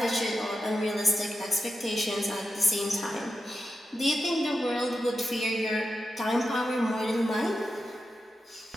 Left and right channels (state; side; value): normal; both; correlation 0.89